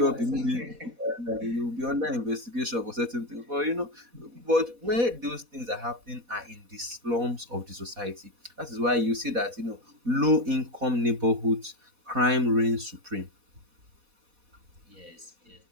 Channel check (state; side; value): late; left; 4.1 ms